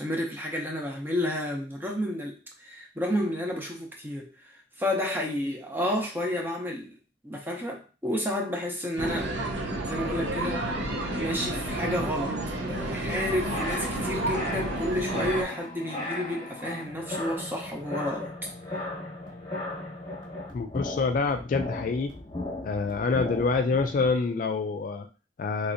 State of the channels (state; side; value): normal; both; correlation 0.46